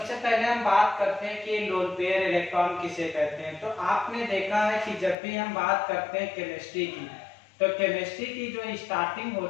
पहले हम बात करते हैं कि लोन पेयर इलेक्ट्रॉन किसे कहते हैं। तो आपने देखा है कि जब भी हम बात करते हैं केमिस्ट्री की, तो केमिस्ट्री की जो स्टार्टिंग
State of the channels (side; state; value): right; drops out; at 5.2 s